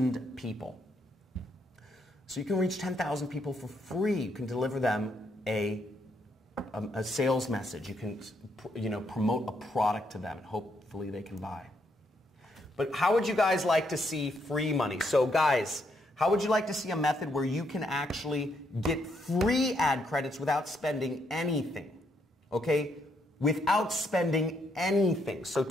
people. So you can reach 10,000 people for free. You can deliver them a sales message. You can, promote a product to them, and hopefully they can buy. But how would you guys like to see free money? So guys, how would you like to see a method where you can actually get free ad credits without spending anything? Okay? Without spending anything. So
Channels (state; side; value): normal; both; correlation 0.75